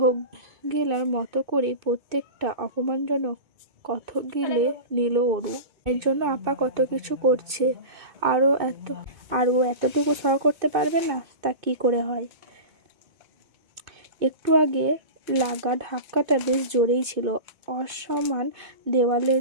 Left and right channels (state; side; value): late; left; 2.6 ms